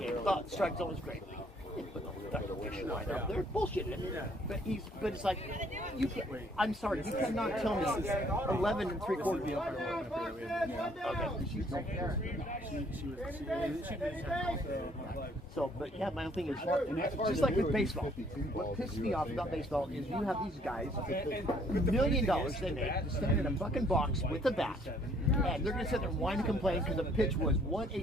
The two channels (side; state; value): both; normal; correlation 0.63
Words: Thought the strike zone was great. Put the fucking fishing line up there. Bullshitting it. But it's like, you can't, I'm sorry, you cannot tell me 11 3/4. So, but yeah, my own thing is, just like with baseball, what pisses me off about baseball is you have these guys, $1 million they make, to stand in a fucking box with a bat, and they're going to sit there and whine and complain because the pitch was